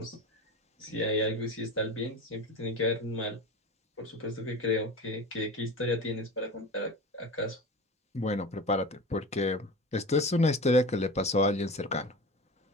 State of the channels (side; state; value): both; normal; correlation 0.31